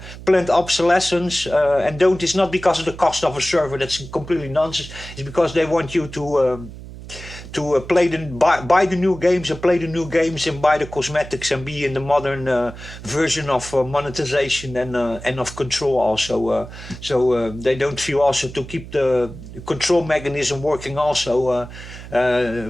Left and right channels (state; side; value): noise; right; hum, 14 dB below the sound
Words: planned obsolescence, and don't. It's not because of the cost of a server. That's completely nonsense. It's because they want you to buy the new games and play the new games and buy the cosmetics and be in the modern version of monetization and of control also. So they don't feel also to keep the control mechanism working also